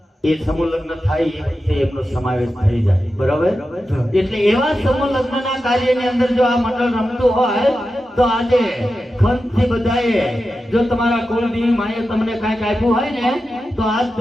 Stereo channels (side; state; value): both; normal; correlation 0.91